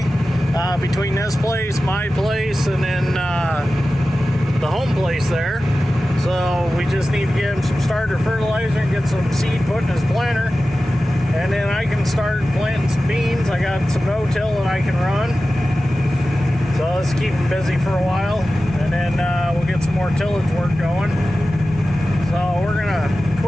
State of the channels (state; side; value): normal; both; correlation 0.95